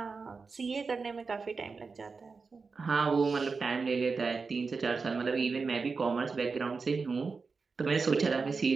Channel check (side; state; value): left; quieter; 4.6 dB